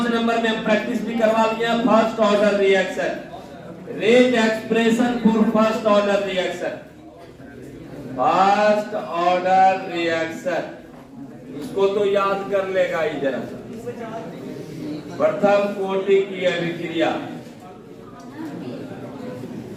नंबर में हम प्रैक्टिस भी करवा लिया, first order reaction, rate expression for first order reaction, first order reaction. इसको तो याद कर लेगा ही जरा सा। प्रथम कोटि की अभिक्रिया,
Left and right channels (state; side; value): identical; both; correlation 1.00